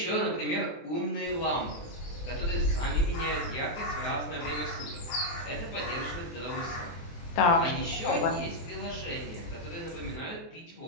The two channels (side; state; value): right; late; 24 ms